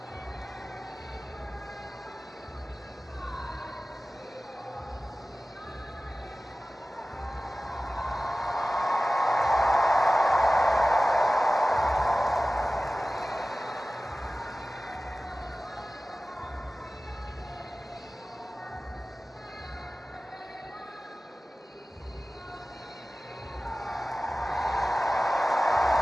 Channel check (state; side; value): normal; both; correlation 0.97